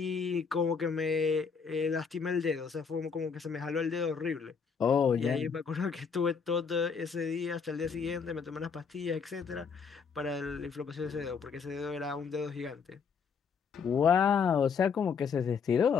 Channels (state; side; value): quieter; right; 5.9 dB